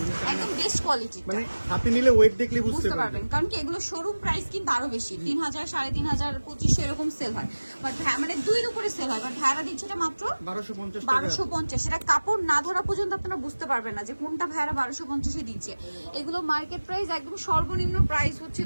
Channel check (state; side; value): inverted; both; correlation -1.00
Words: একদম বেস্ট কোয়ালিটি, মানে হাতে নিলে ওয়েট দেখলে বুঝতে পারবেন। কারণ কি এগুলো শোরুম প্রাইস কিন্তু আরো বেশি, 3000, 3500, 2500 এরকম সেল হয়, বাট মানে 2-এর উপরে সেল হয়, বাট ভাড়া দিচ্ছে এটা মাত্র 1250। এটা কাপড় না ধরা পর্যন্ত আপনারা বুঝতে পারবেন না যে কোনটা ভাড়া 1250 দিচ্ছে। এগুলো মার্কেট প্রাইস একদম সর্বনিম্ন প্রাইস হচ্ছে